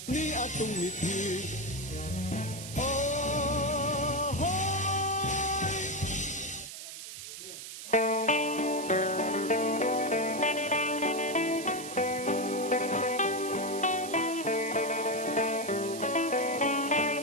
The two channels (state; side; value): noise; right; hiss, 10 dB below the sound